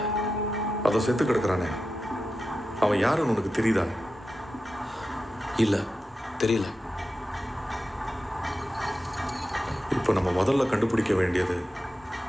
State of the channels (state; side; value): normal; both; correlation 0.91